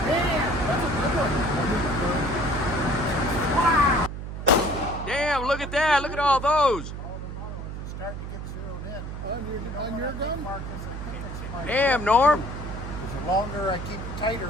Damn, look at that. Look at all those. Starting to get zeroed in. On your gun? Damn, Norm. The longer I keep it tighter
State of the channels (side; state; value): right; noise; hum, 7 dB below the sound